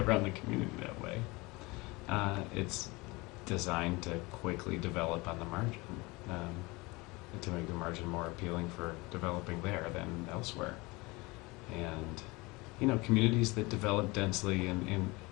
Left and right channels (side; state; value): right; quieter; 24.1 dB